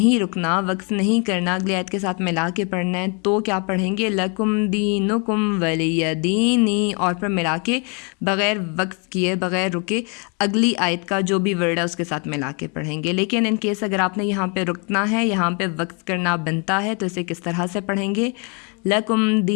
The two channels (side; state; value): right; quieter; 34.7 dB